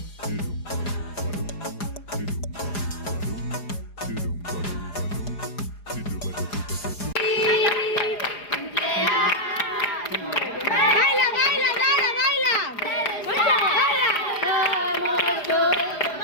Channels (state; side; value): late; right; 4.9 ms